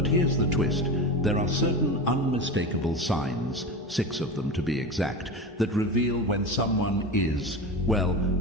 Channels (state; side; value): normal; both; correlation 0.25